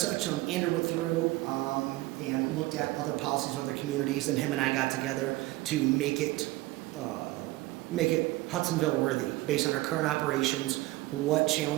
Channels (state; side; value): quieter; left; 19.2 dB